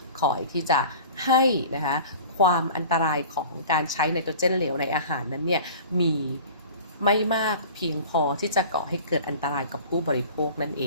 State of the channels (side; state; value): both; inverted; correlation -0.42